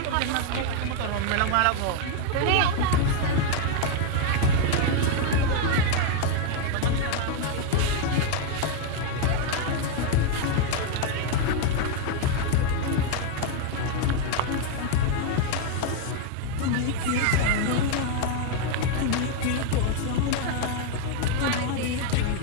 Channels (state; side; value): different; both; correlation 0.01